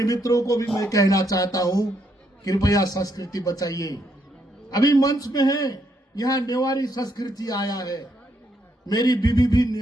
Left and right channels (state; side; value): normal; both; correlation 0.75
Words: मित्रों को भी मैं कहना चाहता हूं, कृपया संस्कृति बचाइए। अभी मंच में है, यहाँ नेवारी संस्कृति आया है। मेरी बीबी भी